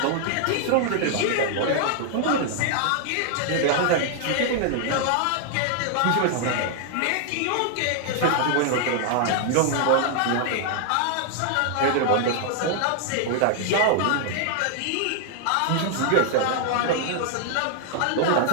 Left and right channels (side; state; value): both; different; correlation 0.00